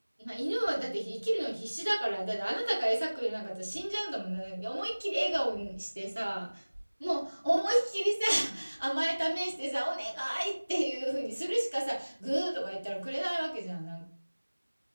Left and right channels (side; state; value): both; inverted; correlation -1.00